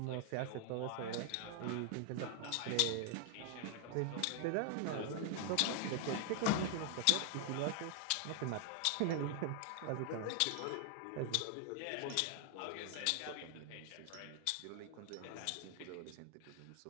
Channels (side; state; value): both; different; correlation 0.00